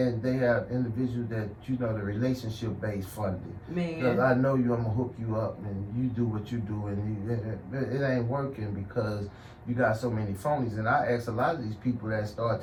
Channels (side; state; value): both; identical; correlation 1.00